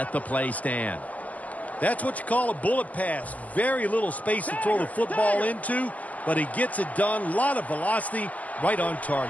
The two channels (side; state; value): right; late; 0.076 ms